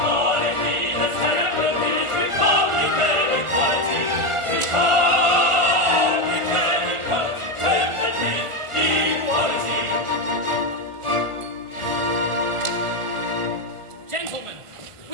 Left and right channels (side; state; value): left; late; 1.4 ms